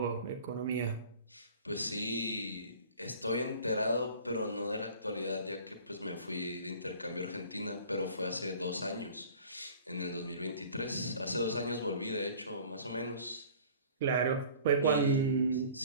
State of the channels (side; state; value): both; inverted; correlation -0.46